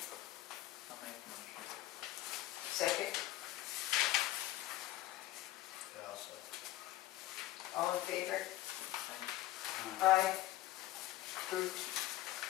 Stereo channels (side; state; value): right; quieter; 15.7 dB